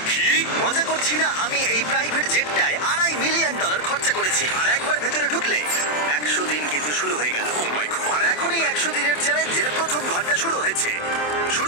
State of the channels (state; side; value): late; right; 27 ms